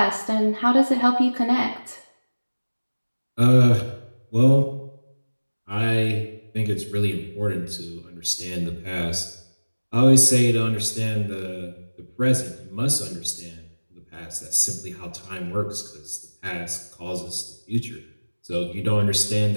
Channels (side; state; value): both; inverted; correlation -1.00